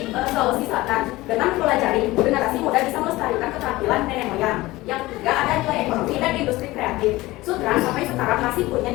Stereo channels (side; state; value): right; quieter; 19.0 dB